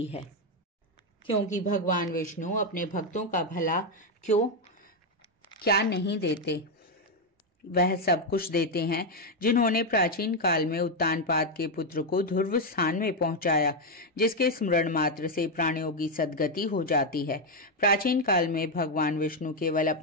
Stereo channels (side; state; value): both; normal; correlation 0.04